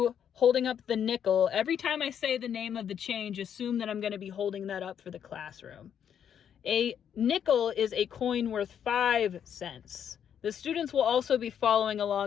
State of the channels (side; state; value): right; quieter; 8.7 dB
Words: holding up the nickel. Every time I say the name of the change, assume that I'm going to be holding that up for the classroom. A nickel is a coin worth 5 cents. The students will also be following